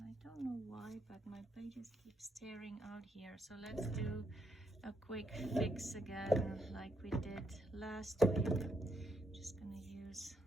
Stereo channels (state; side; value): normal; both; correlation 0.77